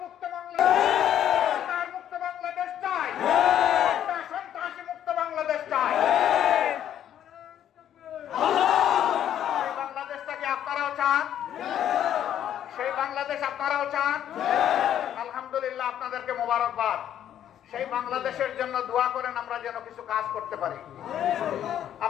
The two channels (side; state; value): right; quieter; 10.5 dB